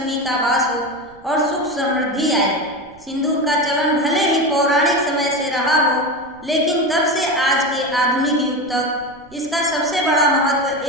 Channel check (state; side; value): noise; right; rumble, 28 dB below the sound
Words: का वास हो और सुख समृद्धि आए। सिंदूर का चलन भले ही पौराणिक समय से रहा हो, लेकिन तब से आज के आधुनिक युग तक इसका सबसे बड़ा महत्व